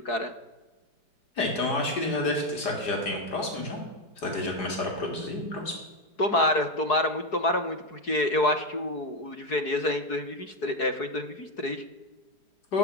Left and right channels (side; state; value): right; late; 5.0 ms